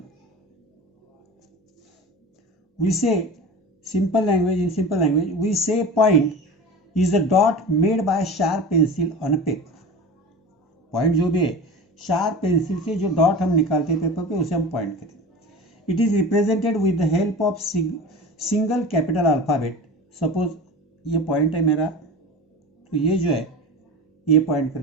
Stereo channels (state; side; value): normal; both; correlation 0.33